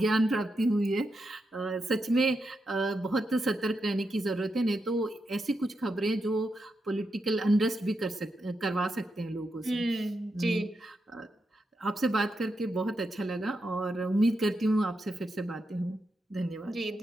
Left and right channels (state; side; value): normal; both; correlation 0.85